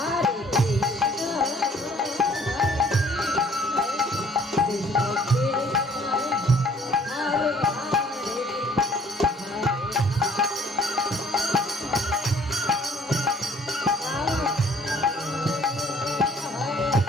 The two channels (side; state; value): both; normal; correlation 0.57